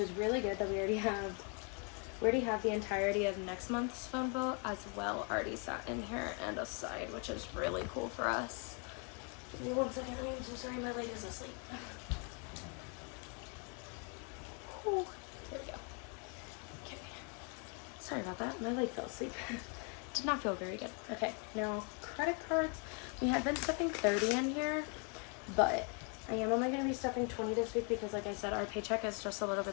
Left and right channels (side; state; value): right; quieter; 37.3 dB